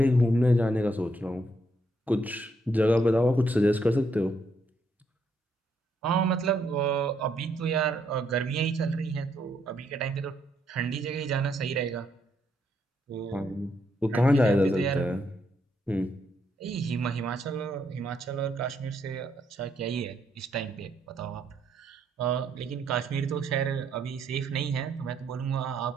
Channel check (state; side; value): normal; both; correlation 0.75